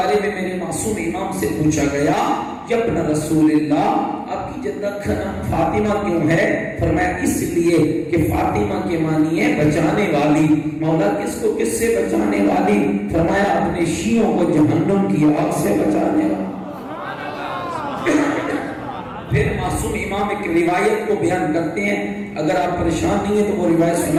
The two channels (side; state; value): both; identical; correlation 1.00